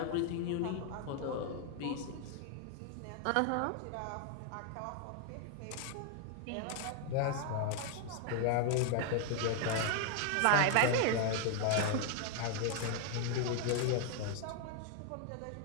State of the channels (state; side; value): different; both; correlation 0.00